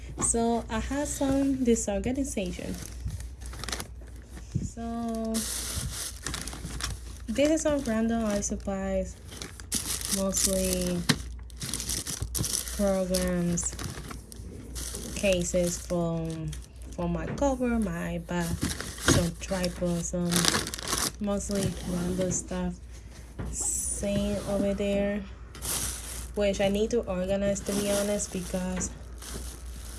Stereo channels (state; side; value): identical; both; correlation 1.00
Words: So I have some disorganization. So this is some random art supplies, mostly programs, cases for my cover, my iPad, some tripods, some mostly random stuff. Same over there, which I need to organize, to be honest, because